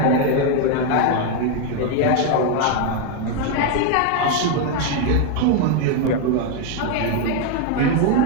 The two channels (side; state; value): both; different; correlation 0.01